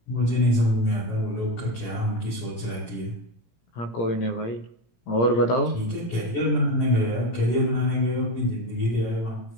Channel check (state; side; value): late; right; 17 ms